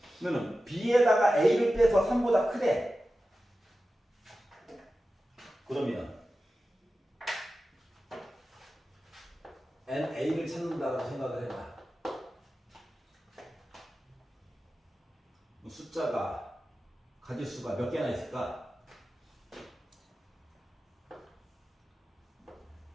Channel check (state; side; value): normal; both; correlation 0.94